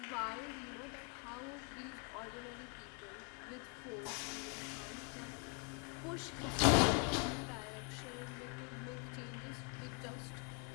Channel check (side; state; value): right; quieter; 37.5 dB